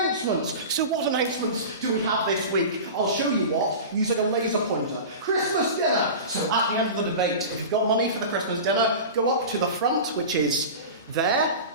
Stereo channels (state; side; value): inverted; both; correlation -0.31